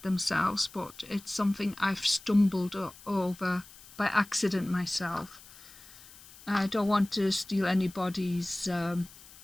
themselves, but it's something I've stumbled over by accident myself. I don't want to steal anybody's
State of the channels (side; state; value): left; noise; hiss, 21 dB below the sound